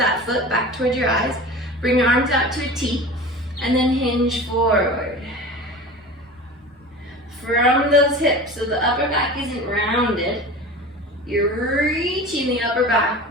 foot back towards your eyes. Bring your arms out to a T, and then hinge forward. From those hips, so the upper back isn't rounded, you're reaching the upper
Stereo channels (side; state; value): both; normal; correlation 0.35